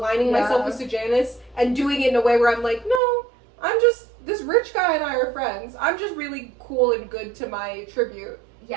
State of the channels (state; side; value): drops out; left; at 3.0 s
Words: myself with Sejanus and doing it in a way where I'm like, no, I'm just, this rich guy and I are friends. I'm just really cool and good to my tribute.